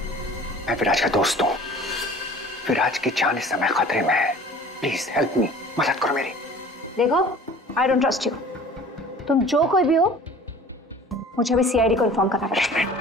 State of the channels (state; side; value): normal; both; correlation 0.46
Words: मैं विराज का दोस्त हूँ। विराज की जान इस समय खतरे में है। प्लीज हेल्प मी, मदद करो मेरी। देखो, आई डोंट ट्रस्ट यू। तुम जो कोई भी हो, मुझे अभी सीआईडी को इन्फॉर्म करना पड़ेगा।